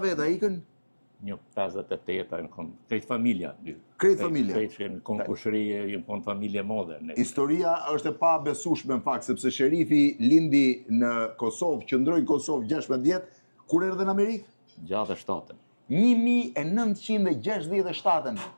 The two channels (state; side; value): inverted; both; correlation -1.00